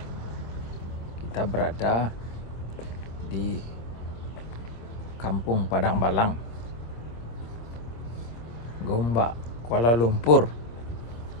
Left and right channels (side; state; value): right; late; 26 ms